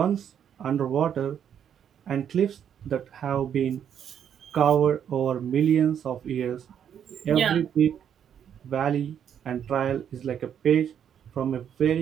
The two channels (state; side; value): quieter; left; 8.8 dB